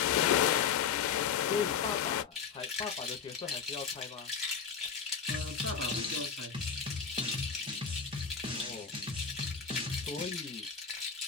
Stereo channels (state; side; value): quieter; right; 6.6 dB